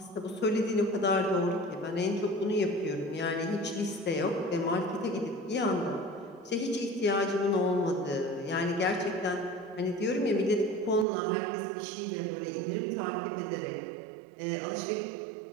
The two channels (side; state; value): left; drops out; at 11.1 s